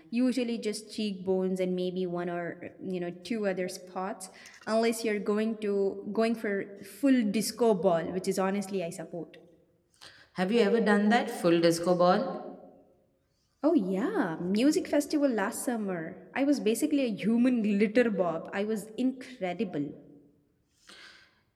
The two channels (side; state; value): both; identical; correlation 1.00